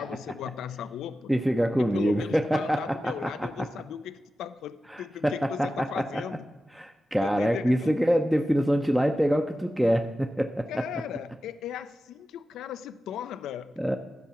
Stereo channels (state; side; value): normal; both; correlation 0.93